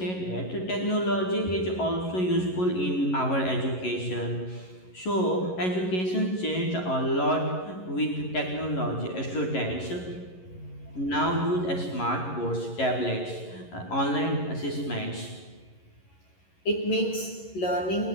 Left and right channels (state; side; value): late; right; 11 ms